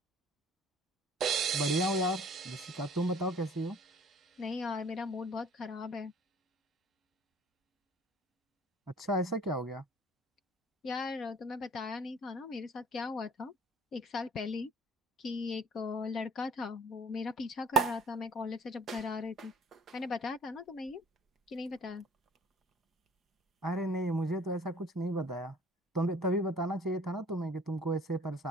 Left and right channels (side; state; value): both; normal; correlation 0.52